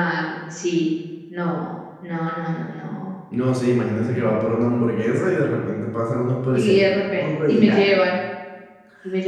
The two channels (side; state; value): both; identical; correlation 1.00